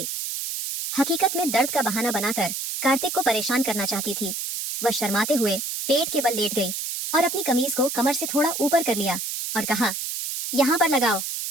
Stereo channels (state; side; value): noise; right; hiss, 4 dB below the sound